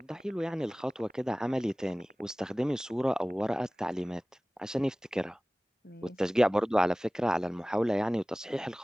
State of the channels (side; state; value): both; normal; correlation 0.98